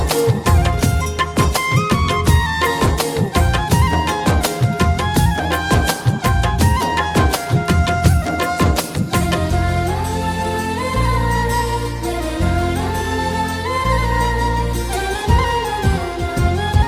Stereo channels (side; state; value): both; identical; correlation 1.00